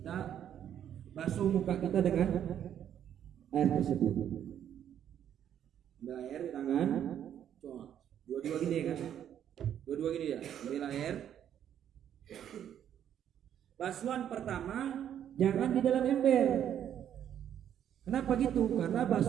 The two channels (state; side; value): quieter; left; 9.9 dB